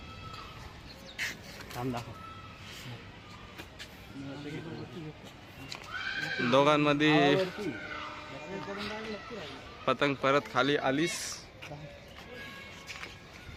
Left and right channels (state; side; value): identical; both; correlation 1.00